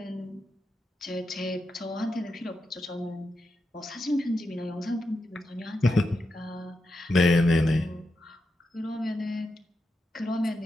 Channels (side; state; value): both; normal; correlation 0.87